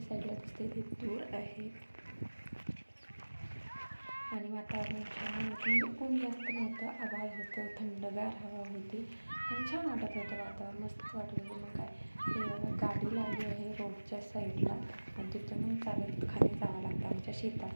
दिसते ते तूर आहे. आणि वातावरण छान होतं, म्हणजे ऊन जास्त नव्हतं, आभाळ होतं, थंडगार हवा होती आणि छान वाटत होतं वातावरण, मस्त वाटत होतं. मग काय हे बघा गाडी लावली आहे रोडच्या साईडला आणि तिथून मग चालत खाली जावं लागतं आमच्या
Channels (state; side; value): inverted; both; correlation -1.00